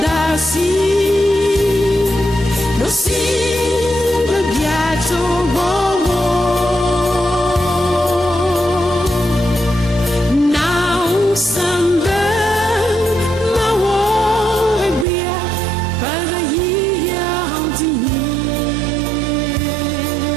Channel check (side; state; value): left; drops out; at 15.1 s